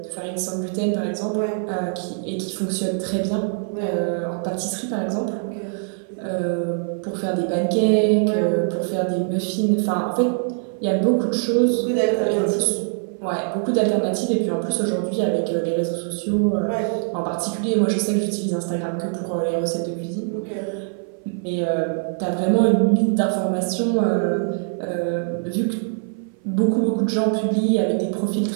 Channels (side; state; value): left; silent; 57 dB below the other